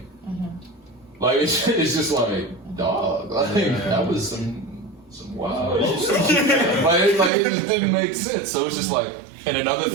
like it's just like, dog, like that was some wild shit. like it just didn't make sense. So it's just like, and another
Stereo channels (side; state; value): left; drops out; at 7.3 s